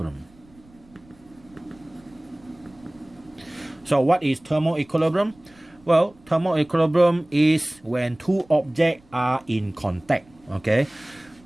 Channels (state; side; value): noise; right; rumble, 28 dB below the sound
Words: So what is thermal equilibrium? Well, thermal equilibrium is when two objects are in contact. Okay,